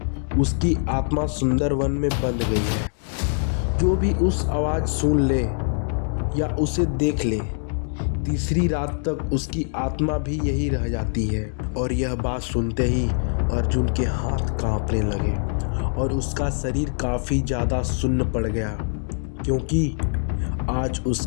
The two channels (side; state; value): right; silent; digital silence